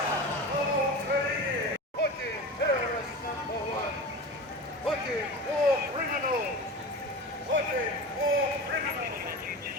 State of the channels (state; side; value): normal; both; correlation 0.30